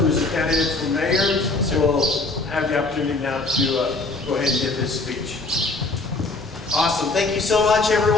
a candidate for mayor, will have the opportunity now to go ahead and give his speech. Awesome. Thank you so much,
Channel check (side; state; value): right; quieter; 3.4 dB